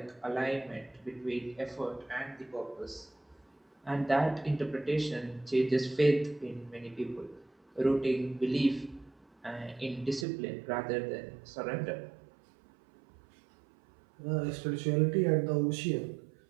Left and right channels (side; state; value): left; drops out; at 10.2 s